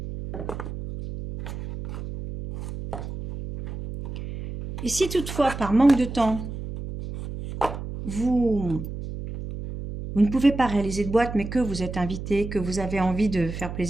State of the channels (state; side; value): noise; right; hum, 8 dB below the sound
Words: Et si toutefois par manque de temps, vous ne pouvez pas réaliser de boîte, mais que vous êtes invité, que vous avez envie de faire